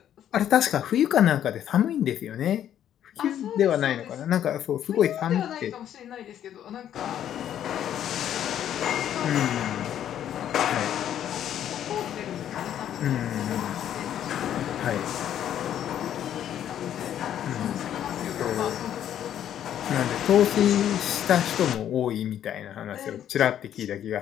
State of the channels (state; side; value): quieter; right; 10.5 dB